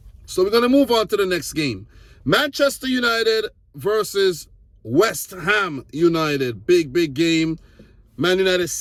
So we're going to move on to the next game. Manchester United versus West Ham United. Big game. Man United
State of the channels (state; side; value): identical; both; correlation 1.00